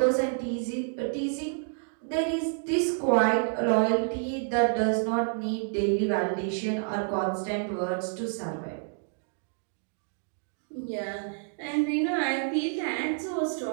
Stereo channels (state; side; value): silent; left; digital silence